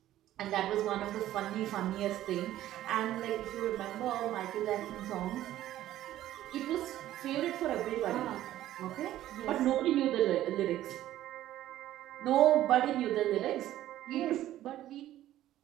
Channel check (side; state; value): left; quieter; 13.5 dB